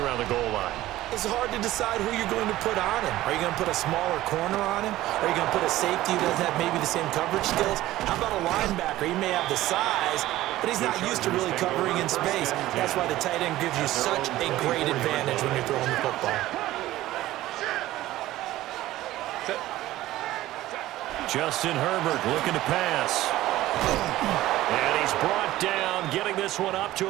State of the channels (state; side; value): quieter; left; 15.7 dB